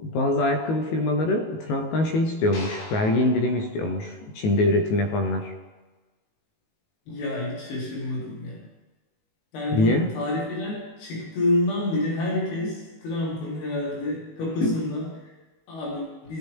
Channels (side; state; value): right; late; 19 ms